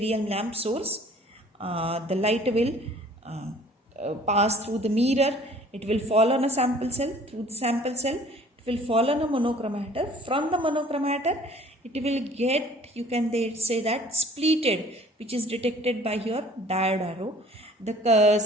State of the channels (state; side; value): normal; both; correlation 0.52